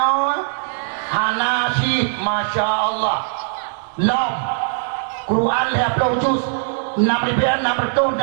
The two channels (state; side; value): silent; left; 66 dB below the other